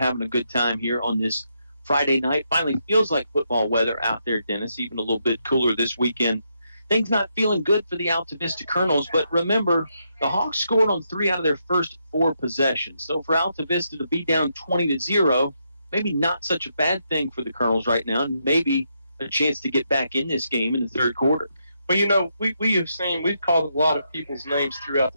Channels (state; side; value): inverted; both; correlation -0.80